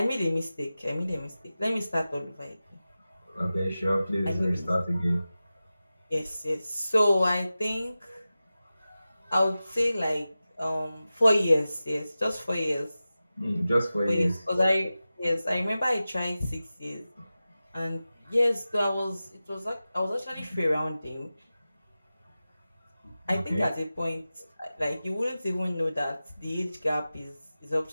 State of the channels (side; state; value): both; inverted; correlation -0.95